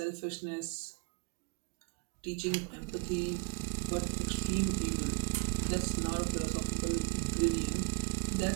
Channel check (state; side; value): quieter; left; 30.9 dB